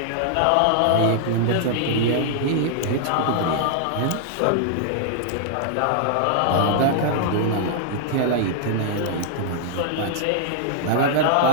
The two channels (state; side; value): different; both; correlation 0.00